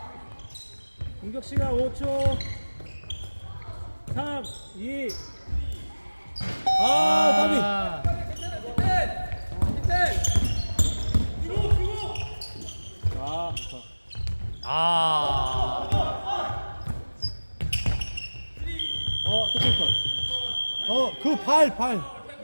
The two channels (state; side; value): inverted; both; correlation -1.00